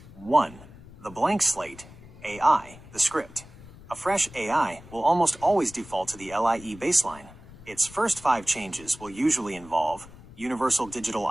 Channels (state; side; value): noise; left; rumble, 19 dB below the sound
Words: 1. The blank slate, AI, the script. A fresh AI will almost always default to the LIE baseline. Its first 5 changes will usually involve universal digital